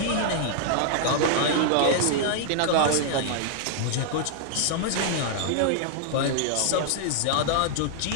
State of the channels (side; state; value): both; different; correlation -0.01